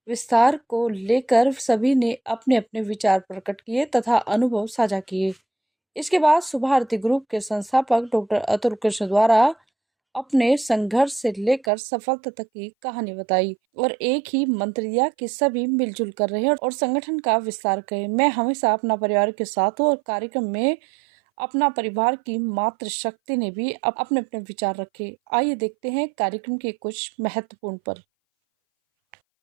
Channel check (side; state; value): left; drops out; at 11.7 s